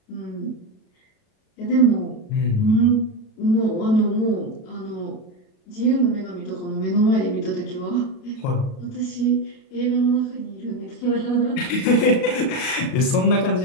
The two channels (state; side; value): late; right; 38 ms